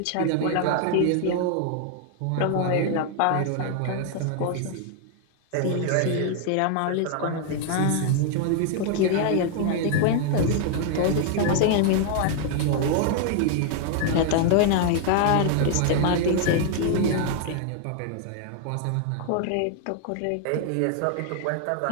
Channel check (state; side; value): different; both; correlation 0.00